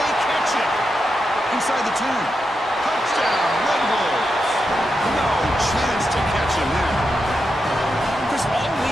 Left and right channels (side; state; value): both; normal; correlation 0.86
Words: catch it? Inside the 2. Touchdown, Red Wolves. No chance to catch him there. Chris, all